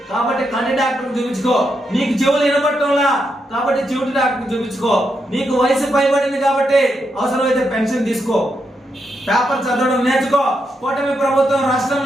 కాబట్టి కంటి డాక్టర్కి చూపించుకో. నీకు చెవులు వినపడటంలా కాబట్టి చెవిటి డాక్టర్కి చూపించుకో. నీకు వయసు పైబడింది కాబట్టి అవసరమైతే పెన్షన్ తీసుకో. పేపర్ చదవడం నేర్చుకో. కూటమి ప్రభుత్వం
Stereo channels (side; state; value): both; normal; correlation 0.82